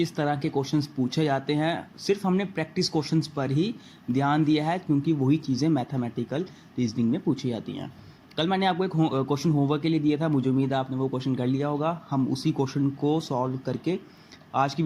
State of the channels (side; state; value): both; identical; correlation 1.00